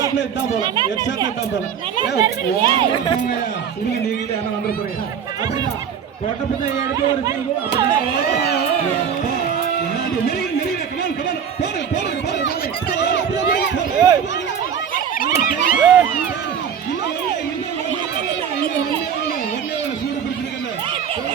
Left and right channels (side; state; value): left; quieter; 7.8 dB